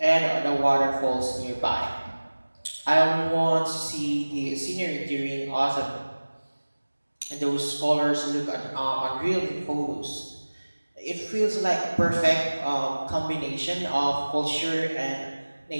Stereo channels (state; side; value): inverted; both; correlation -1.00